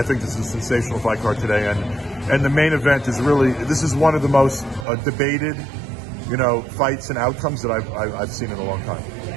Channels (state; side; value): drops out; left; at 4.9 s